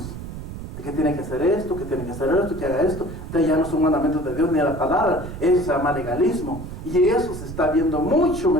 Que tiene que hacer esto, que tiene que hacer esto, que haga esto. Entonces ya no son mandamientos de Dios ni de la palabra. Eso se llama legalismo. Y eso se está viendo mucho,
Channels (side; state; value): right; noise; rumble, 10 dB below the sound